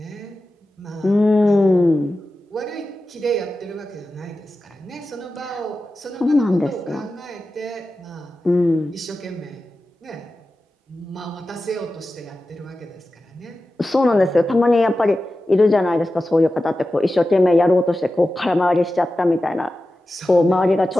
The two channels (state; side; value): normal; both; correlation 0.93